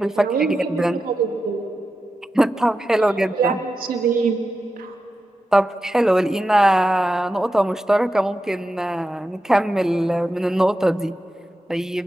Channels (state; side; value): normal; both; correlation 0.90